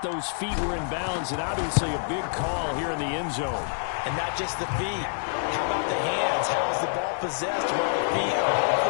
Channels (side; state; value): right; silent; digital silence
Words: those feet were in bounds, and obviously a big call here in the end zone. And not just the feet. How about the hands? How is the ball possessed while the feet are